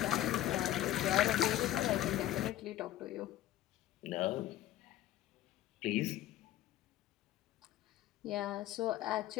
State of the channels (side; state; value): right; quieter; 13.7 dB